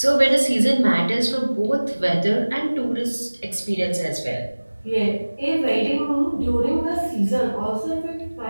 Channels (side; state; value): both; inverted; correlation -1.00